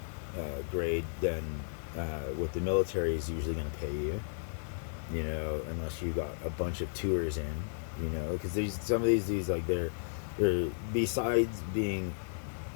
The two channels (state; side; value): silent; right; digital silence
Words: grade than what the military is usually going to pay you, you know, unless you got a bunch of tours in, you know, because some of these dudes, like, they're besides being